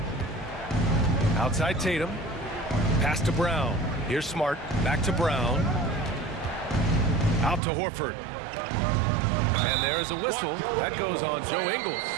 Outside Tatum. Pass to Brown. Here's Smart. Back to Brown. Out to Horford. And there's a whistle. That goes on Joe Ingles.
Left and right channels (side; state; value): left; drops out; at 7.6 s